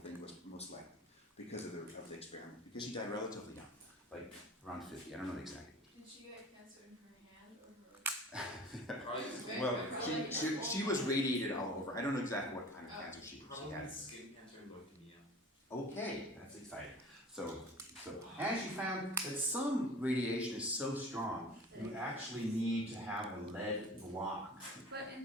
think it was most likely because of the experiment. Because she died relatively young, like around 50. I don't know exactly. Did she get cancer in her hand or her? Probably, Well, she was radiated all over. I don't know exactly what kind of cancer she probably had. skin cancer and leukemia. Okay, that's exciting. So, and she found that some radiation is so strong, you actually need to have a lead block. But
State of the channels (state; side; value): normal; both; correlation 0.41